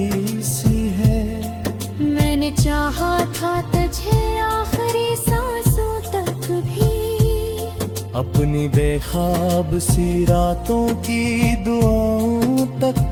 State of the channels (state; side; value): identical; both; correlation 1.00